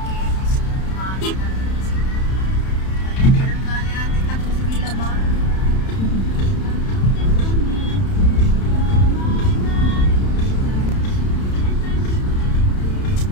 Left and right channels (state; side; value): late; right; 31 ms